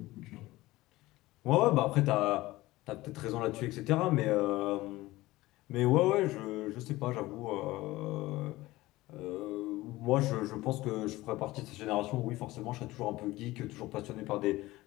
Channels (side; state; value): right; quieter; 18.5 dB